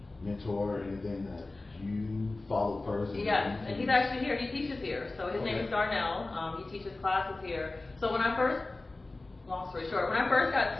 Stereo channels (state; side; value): quieter; right; 3.1 dB